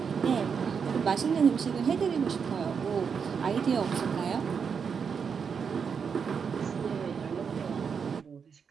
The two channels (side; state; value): left; quieter; 6.4 dB